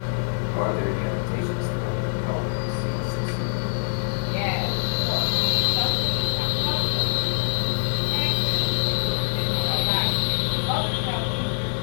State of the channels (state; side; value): silent; right; 62 dB below the other